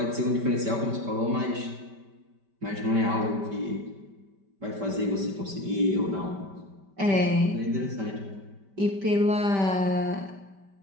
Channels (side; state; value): left; late; 5.1 ms